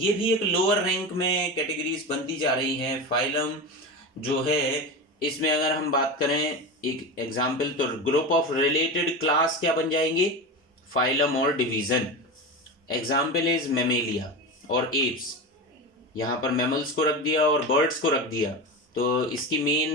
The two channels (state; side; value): normal; both; correlation 0.23